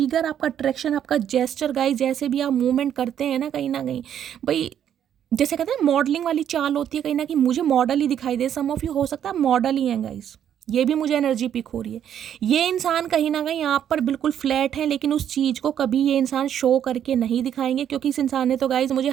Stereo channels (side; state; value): left; quieter; 9.7 dB